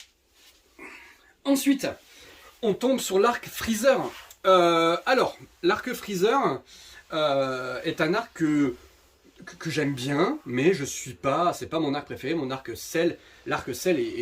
Ensuite, on tombe sur l'arc Freezer. Alors, l'arc Freezer est un arc que j'aime bien, mais c'est pas mon arc préféré. Mon arc Cell, l'arc Cell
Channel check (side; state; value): both; identical; correlation 1.00